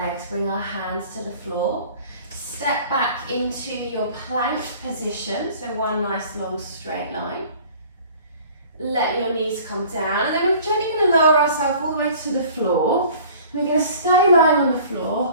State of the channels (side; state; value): both; inverted; correlation -0.48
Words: bring our hands to the floor. Step back into your plank position, so one nice long straight line. Let your knees come down, and then we're gently going to lower ourselves all the way to the floor. We're going to stay lying on the